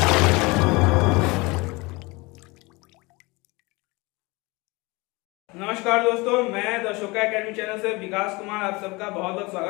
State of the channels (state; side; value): quieter; right; 24.7 dB